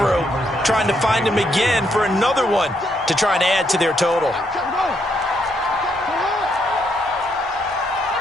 trying to find him again for another one to try and add to their total.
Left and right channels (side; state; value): both; normal; correlation 0.75